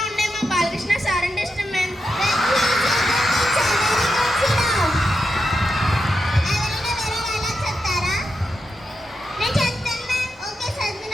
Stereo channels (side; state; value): both; normal; correlation 0.87